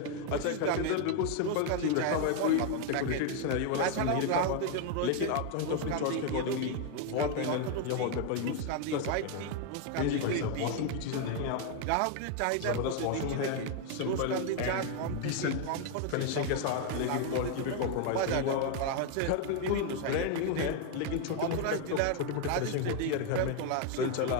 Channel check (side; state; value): both; different; correlation 0.01